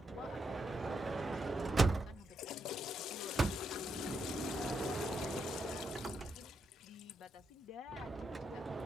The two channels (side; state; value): both; normal; correlation 0.81